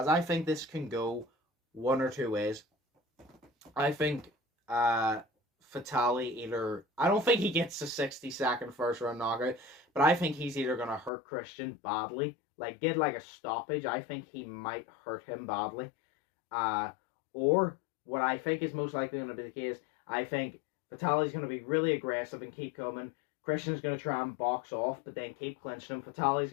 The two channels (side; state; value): right; drops out; at 11.1 s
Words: I think this can go one or two ways. I think Fatale either... I don't think he gets a 60-second first round knockout. But I think he's either going to hurt Christian badly. Like, get like a stoppage. I think he might hurt him badly. Or what I think is most likely going to be the case, I think Fatale's going to be really aggressive and keep coming. Christian's going to try and box off, but then keep clinching him. Fatale's